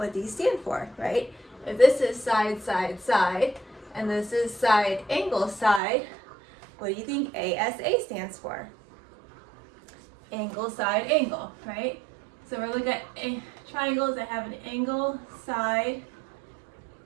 these stand for, right? If this is side and this is side angle side, what do you think ASA stands for? Angle side angle, right? So we're looking at triangles that have an angle side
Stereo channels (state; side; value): drops out; left; at 5.8 s